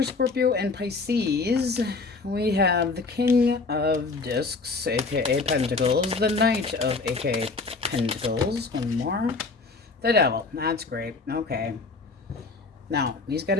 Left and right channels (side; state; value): right; quieter; 4.0 dB